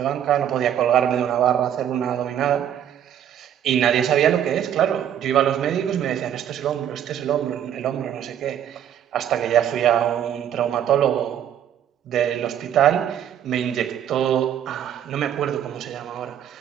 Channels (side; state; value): left; quieter; 10.0 dB